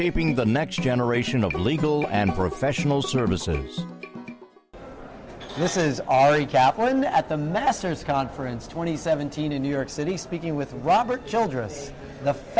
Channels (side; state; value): both; identical; correlation 1.00